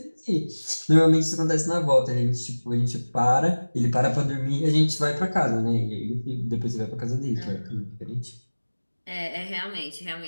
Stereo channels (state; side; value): inverted; both; correlation -1.00